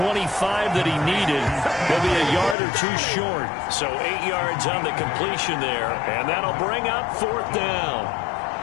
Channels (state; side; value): drops out; right; at 2.6 s